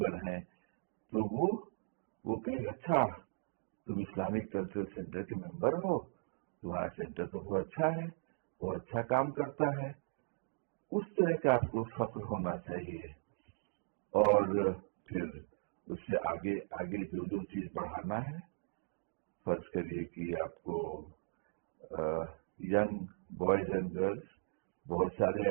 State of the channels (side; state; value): left; silent; digital silence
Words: ہیں، تو وہ کہیں اچھا تم اسلامک کلچر سینٹر کے ممبر ہو، تمہارا سینٹر تو بہت اچھا ہے، وہ اچھا کام کرتا ہے. اس طرح کا آپ کو فخر ہونا چاہیے. اور پھر اس سے آگے جو چیز بڑھانا ہے، فرض کریے کہ آپ کو ینگ بوائز اینڈ گرلس بہت سارے